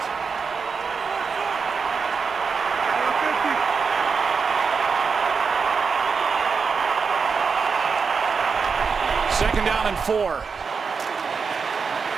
Second down and 4.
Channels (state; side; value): quieter; left; 5.4 dB